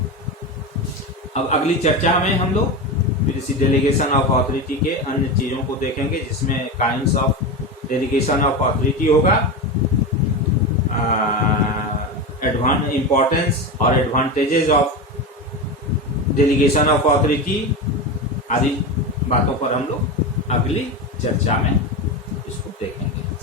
अब अगली चर्चा में हम लोग फिर इसी डेलीगेशन ऑफ अथॉरिटी के अन्य चीजों को देखेंगे जिसमें kinds of delegation of authority होगा, इम्पोर्टेंस और advantages of delegation of authority आदि बातों पर हम लोग अगली चर्चा में इसको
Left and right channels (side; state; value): both; normal; correlation 0.20